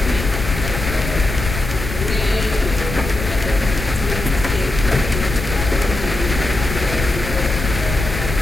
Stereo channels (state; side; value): noise; left; rumble, 5 dB below the sound